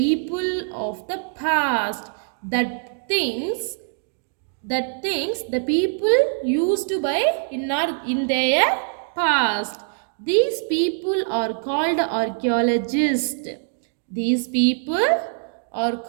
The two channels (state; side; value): silent; left; digital silence